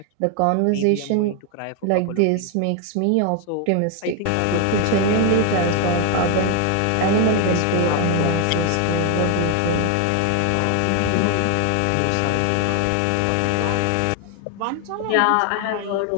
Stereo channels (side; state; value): both; different; correlation 0.01